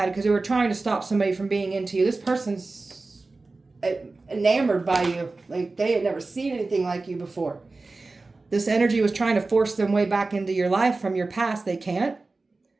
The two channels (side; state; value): left; quieter; 3.5 dB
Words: because they were trying to stop somebody from being into you. This person's enamored by you. Like they had never seen anything like you before. This energy was trying to force them way back into your life from your past. They can't.